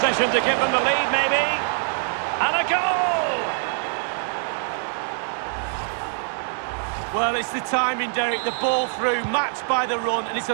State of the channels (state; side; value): silent; left; 63 dB below the other